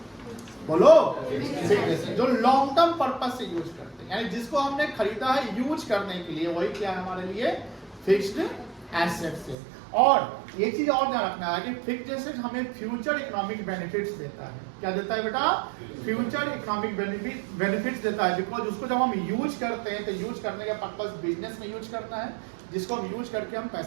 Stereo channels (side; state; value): left; drops out; at 9.6 s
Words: बोलो। फिक्स्ड एसेट जो लॉन्ग टर्म पर्पस से यूज करते हैं, यानी जिसको हमने खरीदा है यूज करने के लिए, वही क्या है हमारे लिए? फिक्स्ड एसेट्स है। और ये चीज और ध्यान रखना है कि फिक्स्ड एसेट हमें फ्यूचर इकोनॉमिक बेनिफिट्स देता है। क्या देता है बेटा? फ्यूचर इकोनॉमिक बेनिफिट्स देता है, बिकॉज उसको जब हम यूज करते हैं तो यूज करने का पर्पस बिजनेस में यूज करना है, जिसको हम यूज करके हम